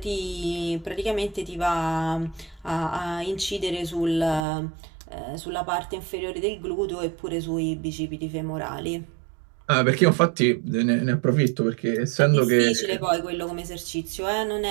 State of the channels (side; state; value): left; drops out; at 4.4 s